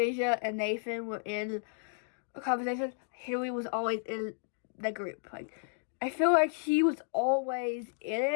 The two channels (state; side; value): silent; right; digital silence